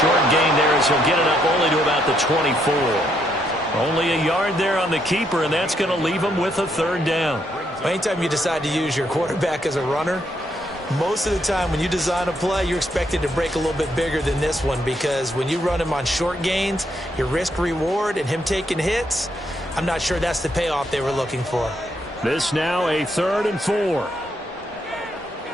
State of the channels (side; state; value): both; normal; correlation 0.75